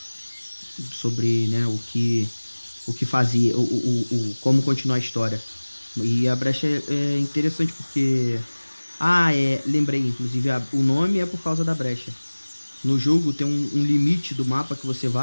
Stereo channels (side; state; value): both; inverted; correlation -1.00